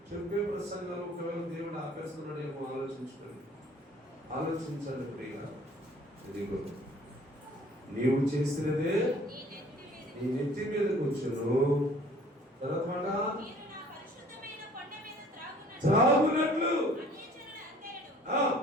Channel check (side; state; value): both; normal; correlation 0.53